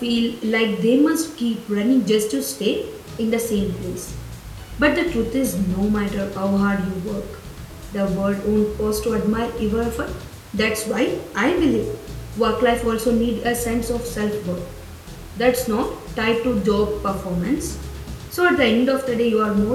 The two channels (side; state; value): both; identical; correlation 1.00